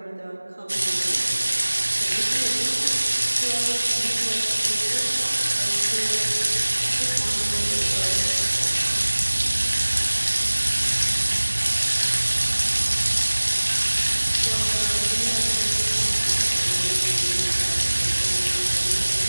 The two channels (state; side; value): inverted; both; correlation -1.00